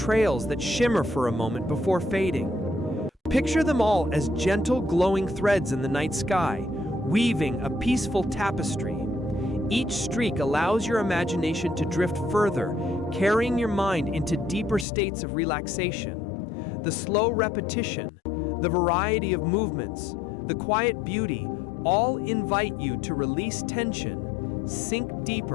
that shimmer for a moment before fading. Picture them all as gentle, glowing threads in the night sky, weaving a peaceful tapestry. Each streak allows your imagination to drift further, carrying your mind into deeper states of relaxation. The slow repetition, the variety of movements, the quiet beauty, all invite you to release tension, sink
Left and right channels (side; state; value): right; drops out; at 14.9 s